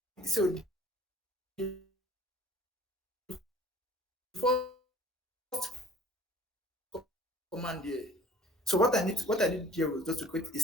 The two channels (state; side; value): normal; both; correlation 0.52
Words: so the first command here. So what I did here was just to create a